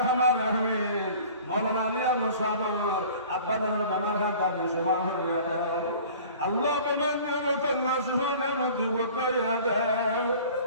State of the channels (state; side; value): inverted; both; correlation -0.46